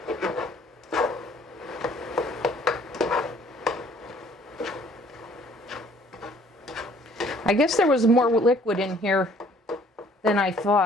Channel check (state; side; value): normal; both; correlation 0.58